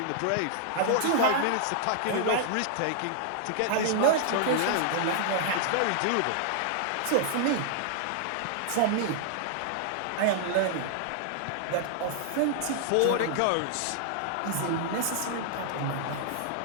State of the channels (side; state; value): both; different; correlation -0.01